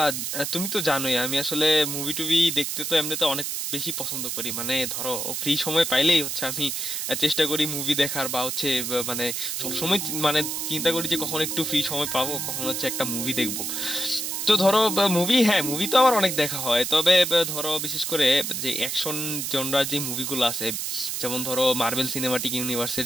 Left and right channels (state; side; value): noise; right; hiss, 3 dB below the sound